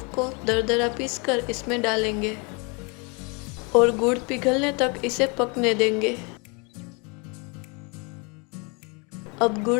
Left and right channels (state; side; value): quieter; right; 31.8 dB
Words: को दरदरा पीसकर इसमें डालेंगे और गुड़ पिघलने तक इसे पकने देंगे। अब